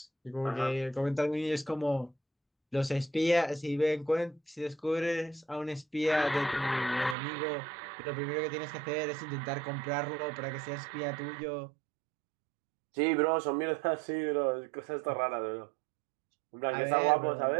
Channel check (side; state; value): left; drops out; at 7.2 s